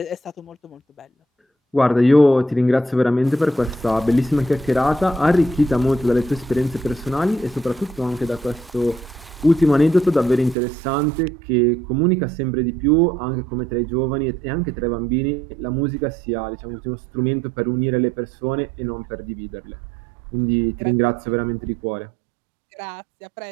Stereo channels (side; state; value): left; drops out; at 10.6 s